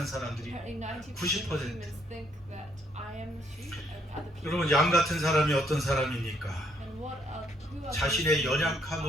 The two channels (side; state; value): both; normal; correlation 0.70